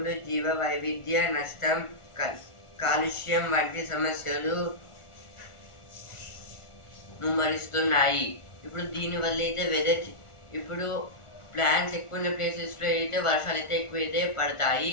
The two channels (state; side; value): late; right; 1.4 ms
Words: జీవ వైవిధ్య నష్టం, కాలుష్యం వంటి సమస్యలు ముమ్మరిస్తున్నాయి. ఇప్పుడు దీనివల్ల అయితే ఇప్పుడు ప్లాంట్స్ ఎక్కువ ఉన్న ప్లేసెస్లో అయితే వర్షాలు అయితే ఎక్కువైతే పడతాయి.